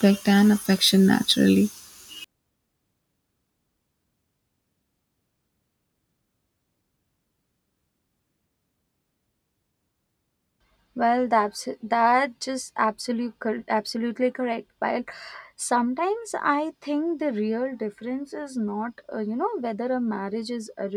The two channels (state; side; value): identical; both; correlation 1.00